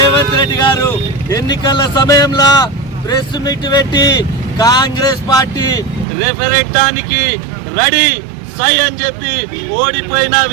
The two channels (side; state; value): left; drops out; at 6.1 s